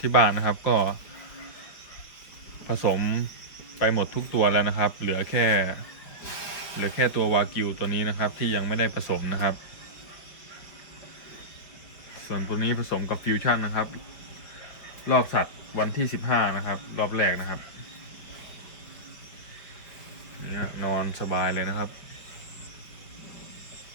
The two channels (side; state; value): right; late; 5.3 ms